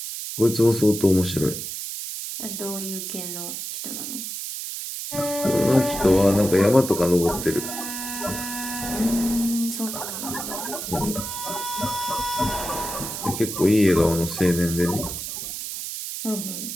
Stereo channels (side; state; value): right; noise; hiss, 6 dB below the sound